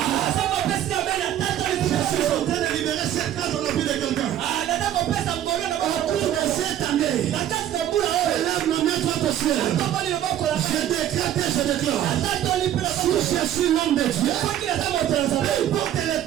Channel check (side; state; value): left; quieter; 11.5 dB